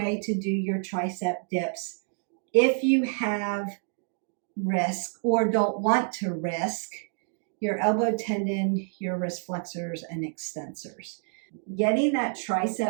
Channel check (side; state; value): left; silent; 56 dB below the other